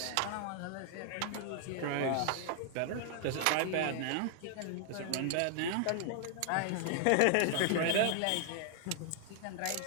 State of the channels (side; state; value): both; different; correlation 0.00